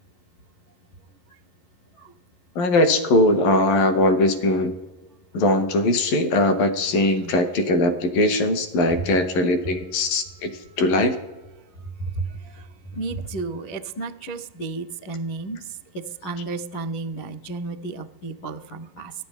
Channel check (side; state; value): right; late; 11 ms